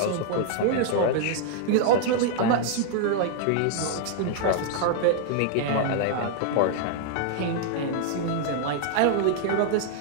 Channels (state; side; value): different; both; correlation -0.01